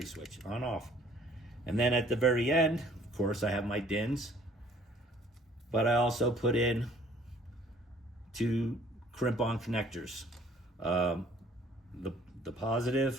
switch, on off. And then at the very end, of course, I have my DINS, but I also put in 2 crimp-on connectors. The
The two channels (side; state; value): both; normal; correlation 0.57